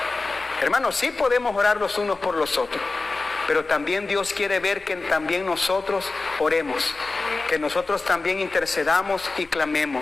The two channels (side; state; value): right; quieter; 3.6 dB